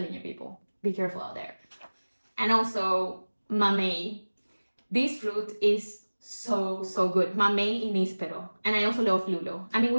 you, people, be careful out there. And also mamey. This fruit is so good. Mamey in Ispero. And I also love lulo. I mean,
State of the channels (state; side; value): inverted; both; correlation -1.00